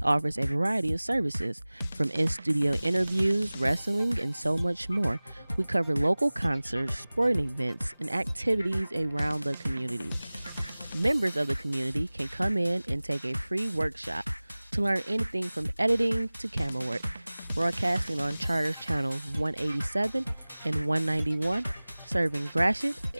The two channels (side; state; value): both; inverted; correlation -0.99